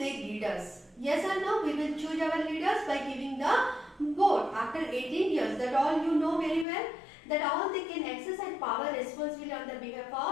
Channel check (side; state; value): right; drops out; at 6.7 s